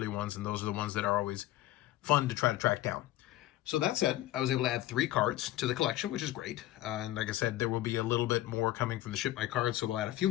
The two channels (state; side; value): quieter; right; 14.9 dB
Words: ones, and those are the ones that are always fun to try to track down. So that said, I was able to add 3 cards to the collection, which is great. And like I said, there will be a little bit more coming from the Ship My Cards, so we'll add a few